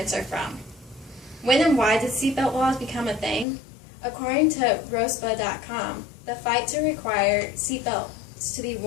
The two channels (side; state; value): right; drops out; at 3.5 s